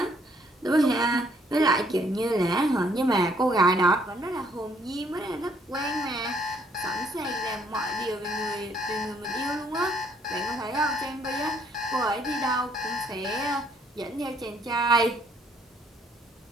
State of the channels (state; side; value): normal; both; correlation 0.66